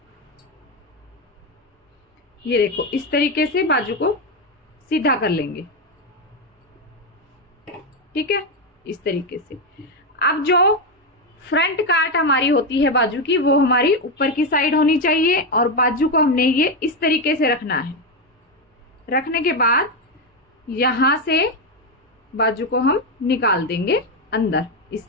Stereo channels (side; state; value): both; normal; correlation 0.08